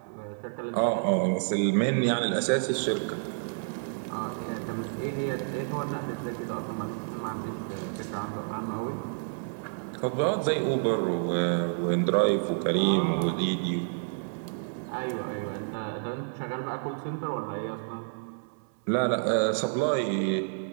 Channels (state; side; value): silent; left; 58 dB below the other